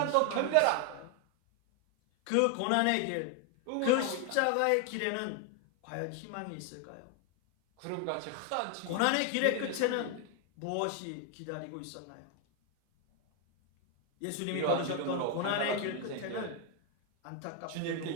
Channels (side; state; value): both; different; correlation 0.01